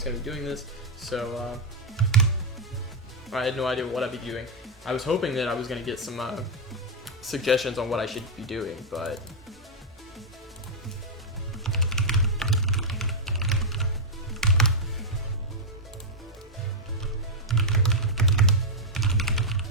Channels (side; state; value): both; normal; correlation -0.02